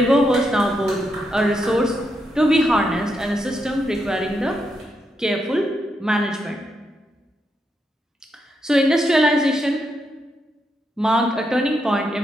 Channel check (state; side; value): normal; both; correlation 0.82